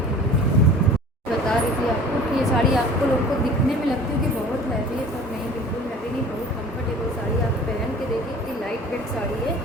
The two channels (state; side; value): normal; both; correlation 0.45